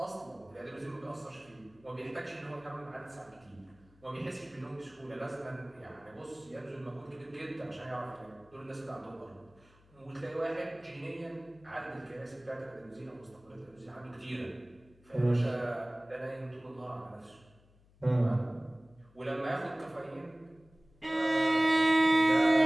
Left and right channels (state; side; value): noise; left; hum, 28 dB below the sound